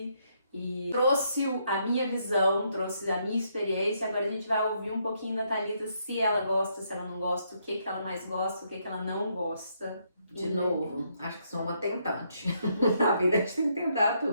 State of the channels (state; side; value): inverted; both; correlation -0.75